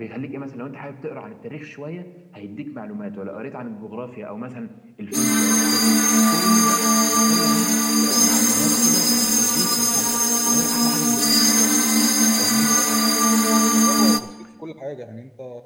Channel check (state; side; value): identical; both; correlation 1.00